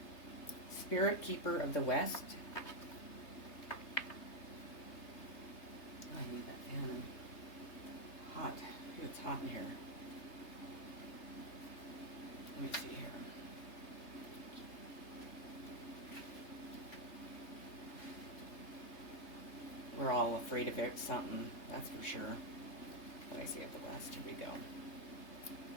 Spirit Keeper of the West. I need that fan. Hot. It's hot in here. Let me see here. We're all afraid of it, something, that's for sure. What I say at the West, here we go.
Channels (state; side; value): late; right; 3.3 ms